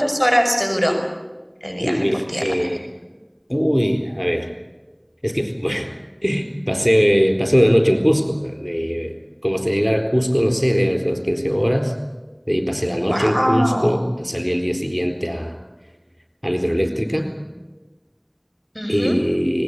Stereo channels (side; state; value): both; identical; correlation 1.00